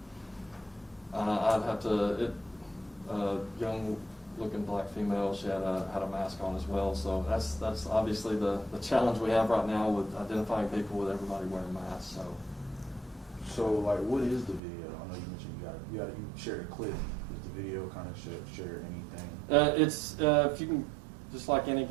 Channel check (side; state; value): left; drops out; at 14.6 s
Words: I'd have to. Young-looking black female. She had a mask on as well. So that's obviously the challenge we have right now with identifying people with everybody wearing masks. So like, what is the video? I know you mentioned you shared a clip. Is the video kind of share anything? It's if you can, just like any